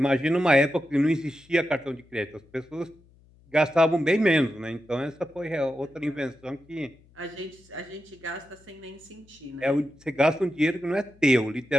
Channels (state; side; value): noise; left; hum, 29 dB below the sound